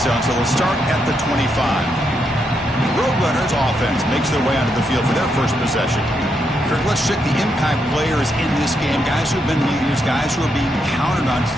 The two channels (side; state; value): both; normal; correlation 0.80